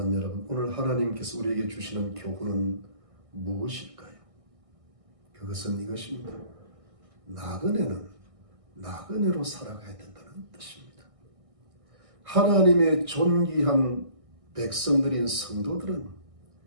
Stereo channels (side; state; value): left; late; 1.6 ms